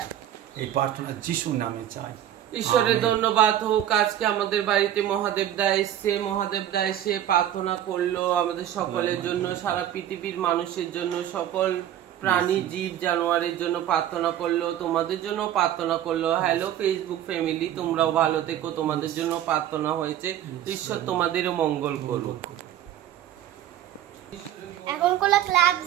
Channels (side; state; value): left; quieter; 11.5 dB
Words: এই প্রার্থনা যিশুর নামে চাই। ঈশ্বরের ধন্যবাদ হোক। আজকে আমাদের বাড়িতে মহাদেব দা এসছে, মহাদেব দা এসে প্রার্থনা করলো আমাদের সকলের জন্য, সারা পৃথিবীর মানুষের জন্য, সকল প্রাণী জীব জানোয়ারের জন্য প্রার্থনা করলো, তোমাদের জন্য প্রার্থনা করলো। হ্যালো ফেসবুক ফ্যামিলি, তোমরাও ভালো থেকো, তোমাদের জন্য প্রার্থনা হয়েছে। ঈশ্বর তোমাদেরও মঙ্গল করুক। এখন কোনো ক্লাবস